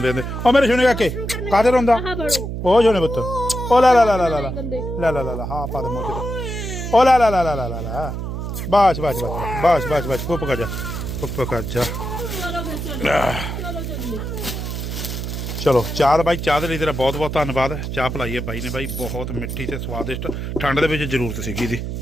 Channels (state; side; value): noise; right; hum, 5 dB below the sound